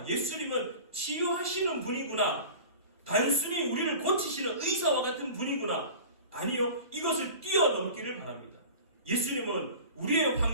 예수님은 치유하시는 분이구나. 단순히 우리를 고치시는 의사와 같은 분이구나. 아니요. 이것을 뛰어넘기를 바랍니다. 예수님은 우리의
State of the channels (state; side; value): inverted; both; correlation -0.38